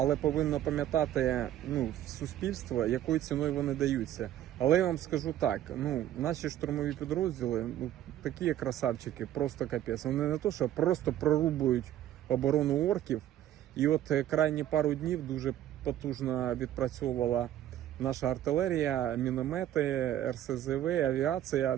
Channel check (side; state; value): left; quieter; 12.3 dB